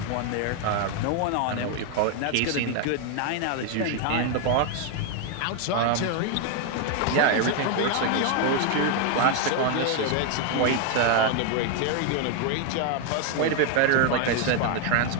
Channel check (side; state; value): both; different; correlation 0.01